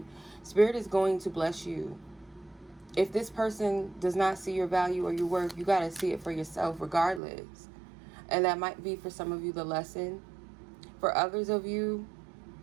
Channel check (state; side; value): drops out; left; at 7.2 s